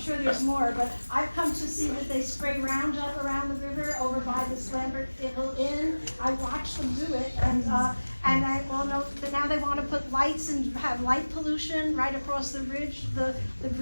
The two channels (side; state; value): both; inverted; correlation -1.00